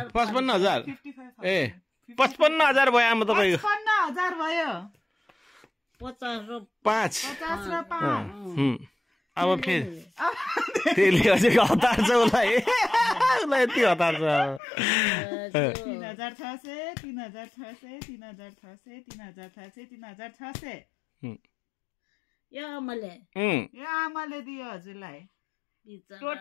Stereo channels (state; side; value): drops out; right; at 14.6 s